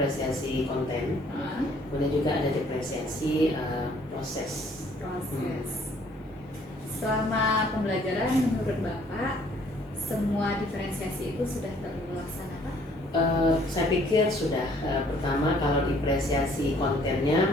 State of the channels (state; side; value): normal; both; correlation 0.61